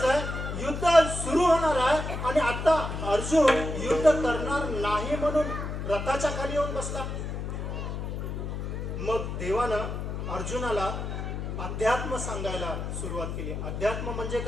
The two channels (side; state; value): left; noise; hum, 5 dB below the sound